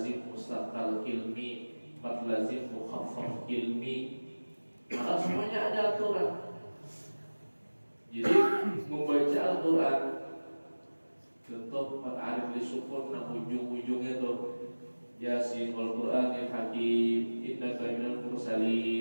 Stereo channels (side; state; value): both; inverted; correlation -1.00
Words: mustaqal ilmi, mat lazim mukhaffaf ilmi. Maka semuanya ada aturan. Jadi membaca Al-Quran, contoh mat arif lisukun, nah ujung-ujungnya tuh Yasin wal Qur'anil Hakim innaka minal